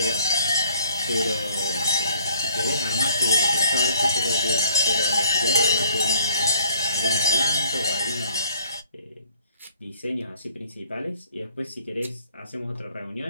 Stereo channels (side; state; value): both; inverted; correlation -0.60